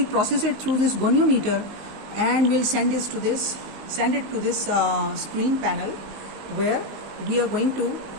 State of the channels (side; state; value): left; late; 19 ms